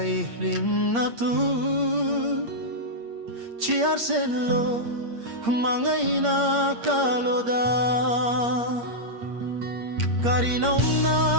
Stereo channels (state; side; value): late; left; 8.6 ms